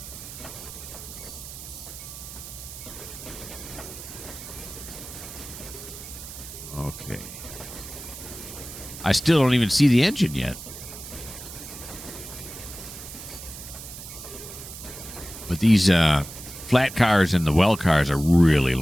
Okay. I still don't even see the engine yet. But these flat cars and the well cars are really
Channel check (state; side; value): noise; right; hiss, 12 dB below the sound